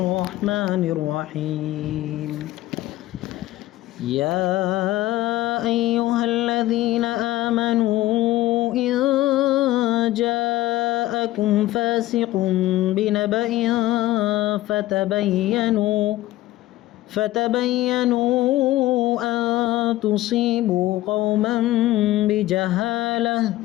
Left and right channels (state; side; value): quieter; right; 16.1 dB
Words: الرحيم يا أيها الذين آمنوا إن جاءكم فاسق بنبأ فتبينوا أن تصيبوا قوما بجهالة